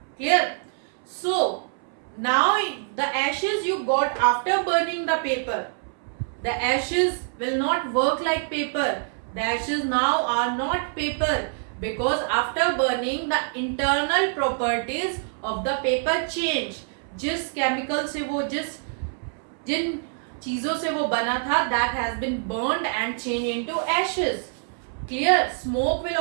Clear? So now the ashes you got after burning the paper, the ashes will not work like paper. The ashes now are not paper, because after burning the internal properties of the paper change. जिस chemical से वो जिन चीजों से वो बना था, that has been burned and changed into ashes. Clear? Smoke will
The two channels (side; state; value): left; silent; 61 dB below the other